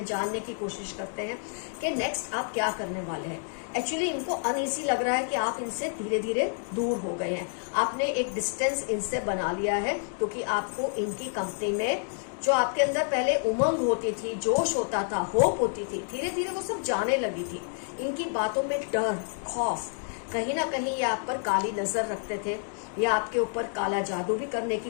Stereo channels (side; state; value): right; silent; 59 dB below the other